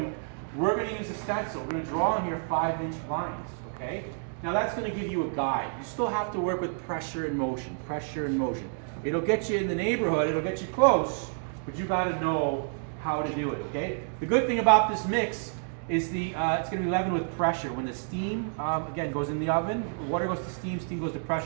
we're going to use a stencil. We're going to draw on here 5-inch lines, okay? Now that's going to give you a guide. You still have to work with pressure and motion, pressure and motion. It'll get you in the neighborhood, it'll get you close, but you got to know how to do it, okay? The good thing about this mix is it's going to be leavened with pressure. When the steam, again, goes in the oven, water goes to steam, steam goes to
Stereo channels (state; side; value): silent; left; digital silence